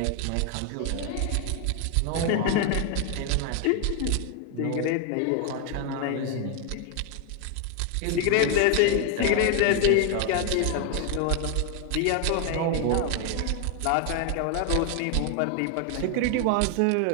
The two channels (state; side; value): different; both; correlation 0.01